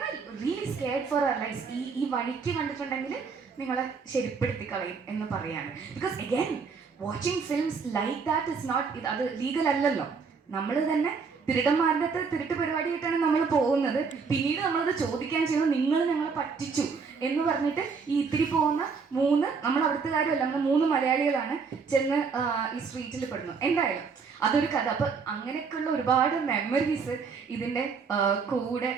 really scared for our life. ഈ വഴിക്ക് കണ്ടിട്ടുണ്ടെങ്കിൽ നിങ്ങളെ ശരിപ്പെടുത്തി കളയും എന്ന് പറയാണ്. Because again watching films like that is not, അത് ലീഗൽ അല്ലല്ലോ. നമ്മൾ തന്നെ തിരുടന്മാരുടെ അടുത്ത് തിരുട്ട് പരിപാടിയായിട്ടാണ് നമ്മൾ പോകുന്നത്. പിന്നീട് നമ്മളത് ചോദിക്കാൻ ചെയ്യുന്നത് നിങ്ങൾ ഞങ്ങളെ പറ്റിച്ചു എന്ന് പറഞ്ഞിട്ട് ഈ ഇത്തിരി പോകുന്ന 3 നമ്മൾ അവിടുത്തുകാരുമല്ല, നമ്മൾ 3 മലയാളികളാണ് ചെന്ന് ഈ സ്ട്രീറ്റിൽ പെടുന്നു. എന്തായാലും അതൊരു കഥ. അപ്പം അങ്ങനെയൊക്കെയുള്ള ഒരുപാട് മെമ്മറീസ് ഇതിൻ്റെ കൂടെ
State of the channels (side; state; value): left; quieter; 5.3 dB